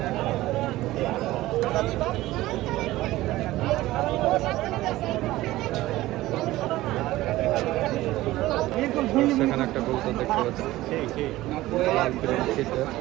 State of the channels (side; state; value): left; quieter; 17.0 dB